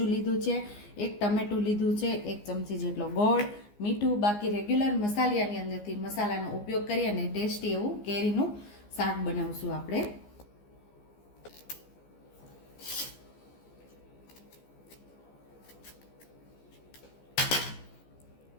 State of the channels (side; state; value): right; late; 14 ms